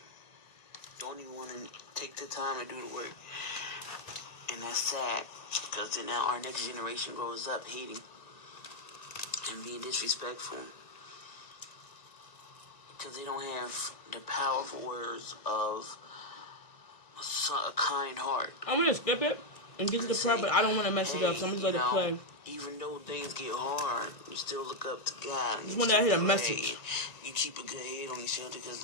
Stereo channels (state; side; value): late; right; 1.9 ms